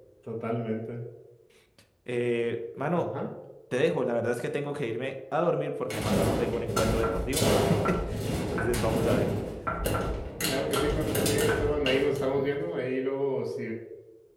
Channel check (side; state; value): both; identical; correlation 1.00